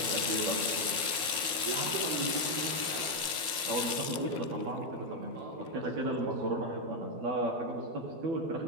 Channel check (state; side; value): late; left; 12 ms